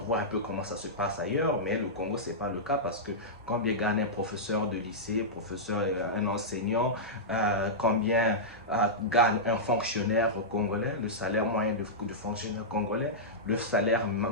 un peu comment ça se passe ailleurs, mais le Congo, ce n'est pas le cas parce que combien gagne un professeur de lycée, un enseignant, combien gagne un fonctionnaire congolais, le salaire moyen de fonctionnaire congolais, le salaire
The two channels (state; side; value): normal; both; correlation -0.12